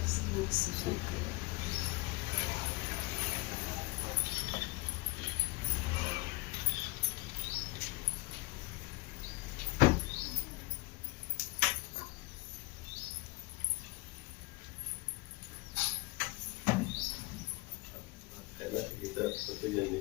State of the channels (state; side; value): quieter; right; 24.1 dB